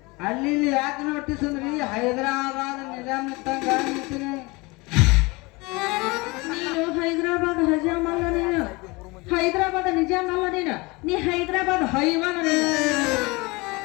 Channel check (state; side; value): quieter; right; 24.9 dB